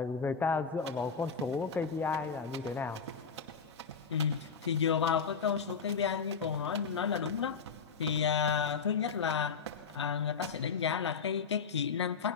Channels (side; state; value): right; quieter; 5.8 dB